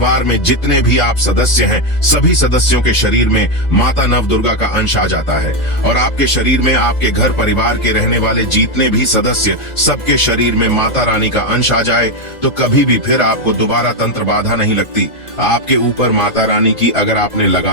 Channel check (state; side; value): late; right; 2.1 ms